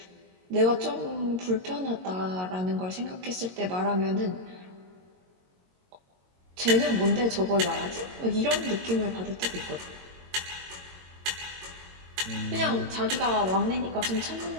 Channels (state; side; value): late; left; 22 ms